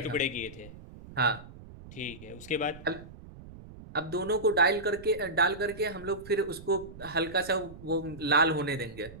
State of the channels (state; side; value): noise; right; rumble, 16 dB below the sound